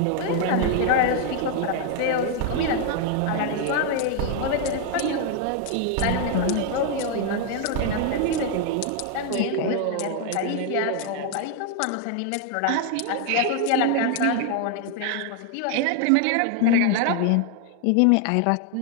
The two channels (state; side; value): different; both; correlation 0.00